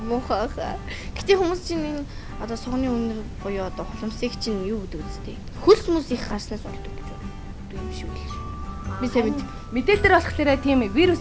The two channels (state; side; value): identical; both; correlation 1.00